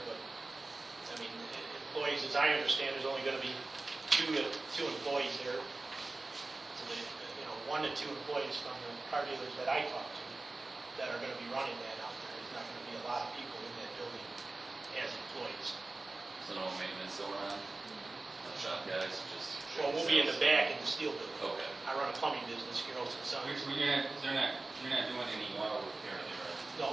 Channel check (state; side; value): quieter; left; 3.2 dB